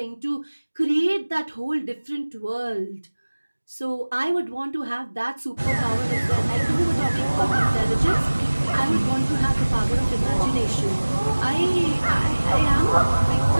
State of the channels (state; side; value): inverted; both; correlation -1.00